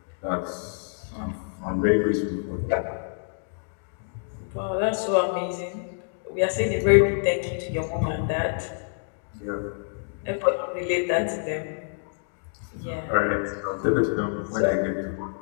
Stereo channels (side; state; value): right; silent; digital silence